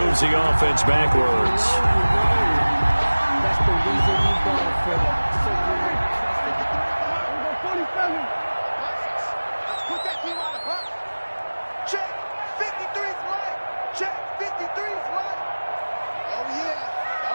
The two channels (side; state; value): both; inverted; correlation -1.00